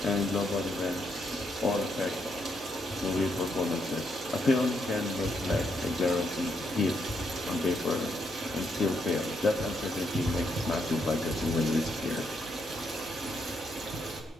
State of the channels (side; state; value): both; normal; correlation 0.77